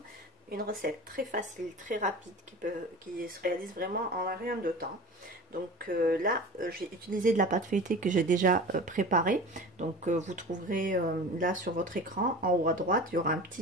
Une recette très facile, très rapide qui se réalise vraiment en rien de temps. Donc là, j'ai utilisé de la pâte feuilletée que j'ai déjà préparée. Donc vous trouverez là sur votre écran, en haut à droite, il y aura un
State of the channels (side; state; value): both; normal; correlation 0.36